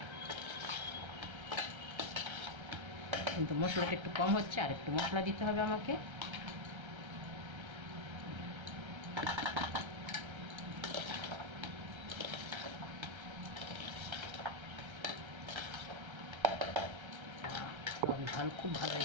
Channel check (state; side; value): late; left; 1.3 ms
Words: কিন্তু মশলাটা একটু কম হচ্ছে, আর একটু মশলা দিতে হবে আমাকে। ঝাল খুব ভালো